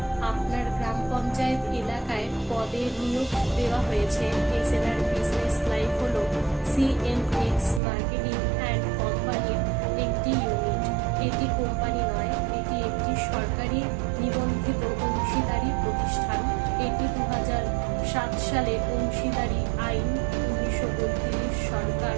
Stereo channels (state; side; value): drops out; left; at 7.8 s